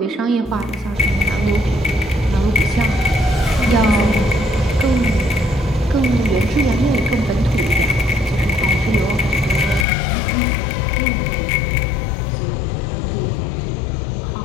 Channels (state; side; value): drops out; right; at 9.9 s